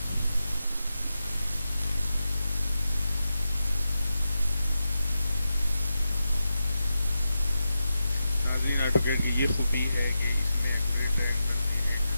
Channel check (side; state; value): both; inverted; correlation -0.90